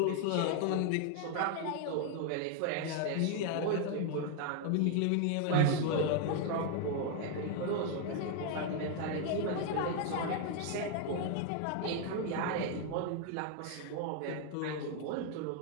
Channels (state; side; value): different; both; correlation 0.01